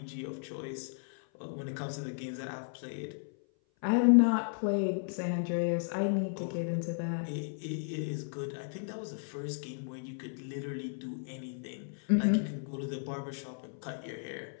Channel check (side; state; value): right; silent; 55 dB below the other